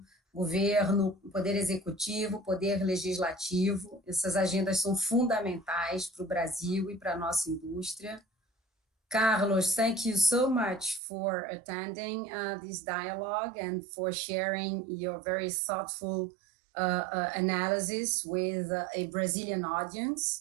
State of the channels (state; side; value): drops out; left; at 11.0 s